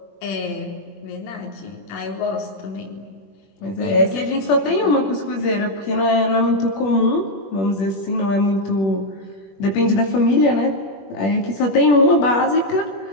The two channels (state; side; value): late; right; 21 ms